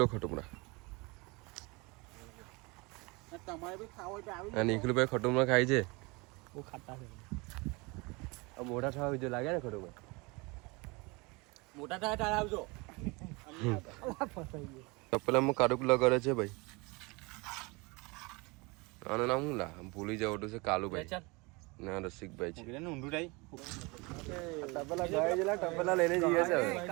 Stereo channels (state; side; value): quieter; left; 26.6 dB